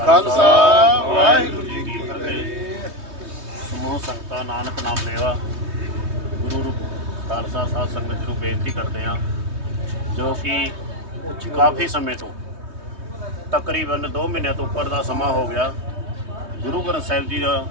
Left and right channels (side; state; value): left; late; 3.2 ms